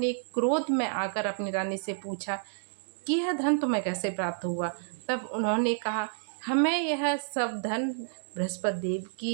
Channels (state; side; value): silent; left; digital silence